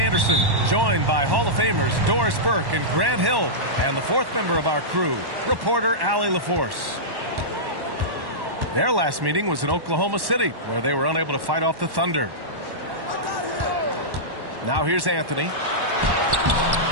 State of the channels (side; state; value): left; late; 1.1 ms